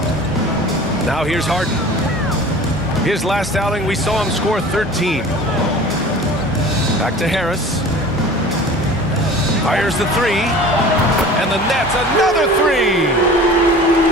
Now here's Harden. His last outing, we saw him score 13. Back to Harris. Fires the 3. And the Nets, another 3.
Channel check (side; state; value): both; normal; correlation 0.41